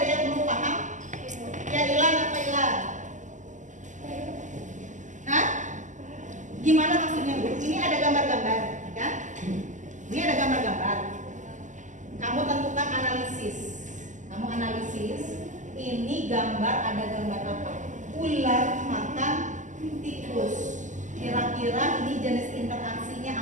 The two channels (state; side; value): late; left; 0.36 ms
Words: yang belum paham? Ya Ilan apa Ilan? Hah? Gimana maksudnya Bu? Ini ada gambar-gambar, kan? Ini ada gambar-gambar. Kamu tentukan analisis. Kamu analisis. Ini gambar, ada gambar apa? Ular makan tikus. Kira-kira ini jenis interaksinya